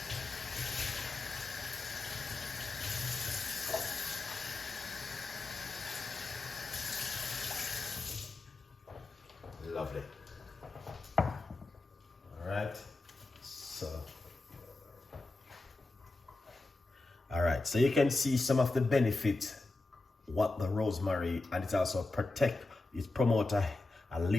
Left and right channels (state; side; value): quieter; right; 3.2 dB